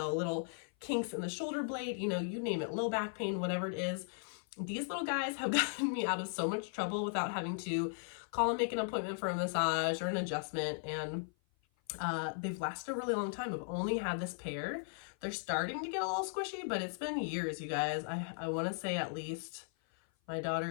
kinks in the shoulder blade, you name it, low back pain, whatever it is. These little guys have gotten me out of so much trouble without having to call and make an appointment for a massage or an adjustment. And they've lasted a really long time. I've only had this pair. They're starting to get a little squishy, but it's been years, you guys. I want to say at least my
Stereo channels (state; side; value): silent; right; 53 dB below the other